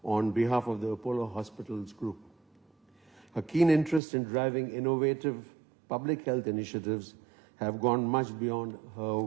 on behalf of the Apollo Hospitals Group. Her keen interest in driving innovative public health initiatives have gone much beyond her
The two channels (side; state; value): left; drops out; at 4.0 s